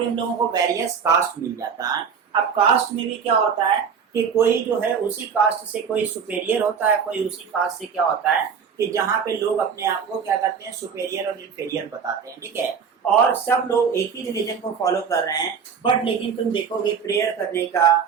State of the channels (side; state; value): left; quieter; 6.5 dB